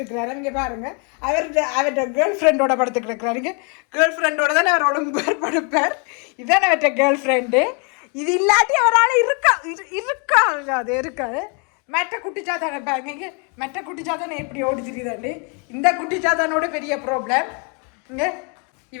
இங்கே பாருங்க, அவர்கிட்ட கேர்ள் ஃப்ரெண்டோட படுத்துட்டு இருக்கிறாருங்க. கேர்ள் ஃப்ரெண்டோட தானே அவர் ஒலிம்பார் படுப்பார். இதுதானே அவர்கிட்ட கேர்ள் ஃப்ரெண்டு. இது இல்லாட்டி அவரால் இருக்கா அது இருக்காது. மெட்ட குட்டிச்சாத்தானே பாருங்க, இங்கே மெட்ட குட்டிச்சாத்தானே எப்படி ஓடி தெரியுதாண்டு. இந்த குட்டிச்சாத்தானோட பெரிய ப்ராப்ளம் இங்கே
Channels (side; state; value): right; quieter; 36.4 dB